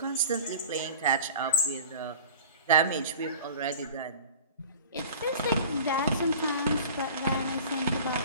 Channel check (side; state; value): both; inverted; correlation -0.42